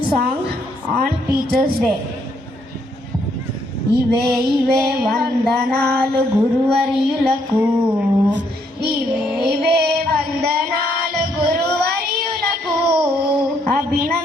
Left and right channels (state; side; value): normal; both; correlation 0.72